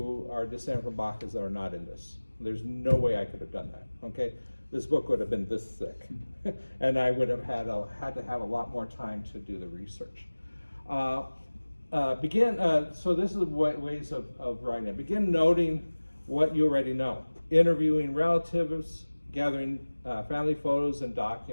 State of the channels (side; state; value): both; inverted; correlation -1.00